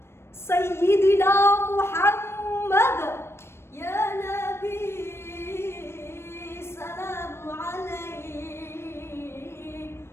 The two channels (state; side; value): late; right; 0.12 ms